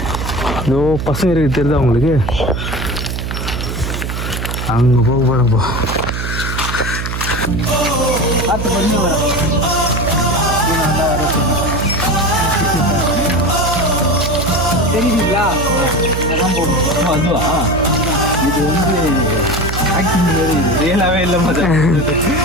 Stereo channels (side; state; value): right; noise; hum, 4 dB below the sound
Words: இதோ பசங்க இருக்கு, தெரியுதா உங்களுக்கு? அங்கே போக போகிறப்போ தெரியுதுங்களா? அதுவா இது வந்து ஆக்டிங் ரியலாகவே இல்லை மாதிரி.